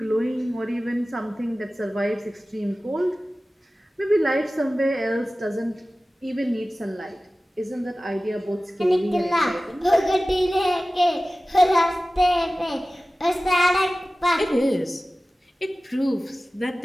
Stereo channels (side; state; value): both; normal; correlation 0.96